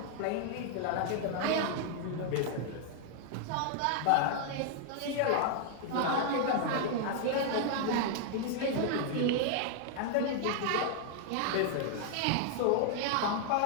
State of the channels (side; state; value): both; different; correlation 0.00